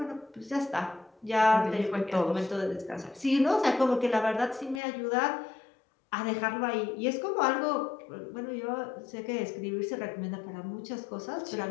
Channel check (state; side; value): drops out; right; at 4.8 s